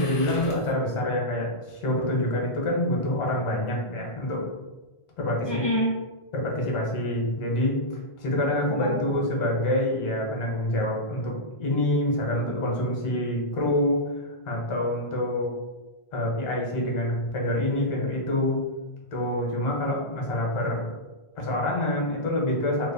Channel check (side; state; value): right; late; 1.4 ms